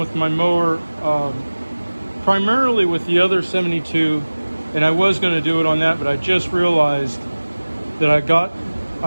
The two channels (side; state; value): both; inverted; correlation -1.00